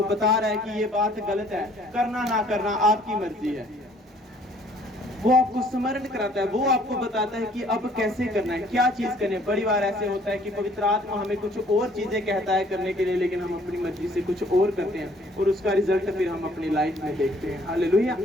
बता रहा है कि ये बात गलत है, करना ना करना आपकी मर्जी है। वो आपको स्मरण कराता है, वो आपको बताता है कि अब कैसे करना है, क्या चीज करनी है। बड़ी बार ऐसे होता है कि पवित्र आत्मा हमें कुछ और चीजें कहता है करने के लिए, लेकिन हम अपनी मर्जी से कुछ और करते हैं, और उसका रिजल्ट फिर हम अपनी लाइफ में देखते हैं। हालेलुया।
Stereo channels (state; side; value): normal; both; correlation 0.59